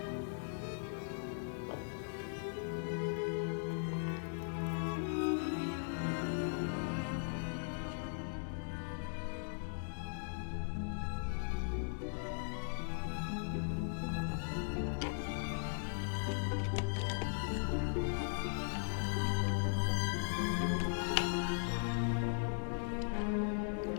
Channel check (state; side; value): silent; right; digital silence